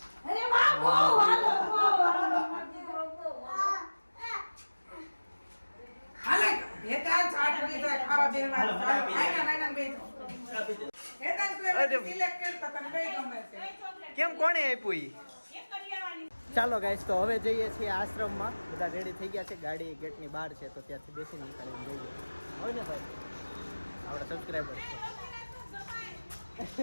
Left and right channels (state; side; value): inverted; both; correlation -1.00